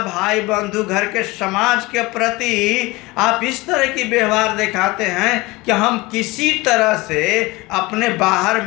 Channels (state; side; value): quieter; right; 22.3 dB